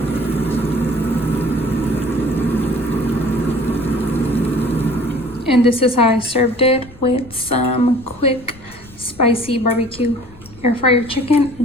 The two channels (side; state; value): left; noise; rumble, 22 dB below the sound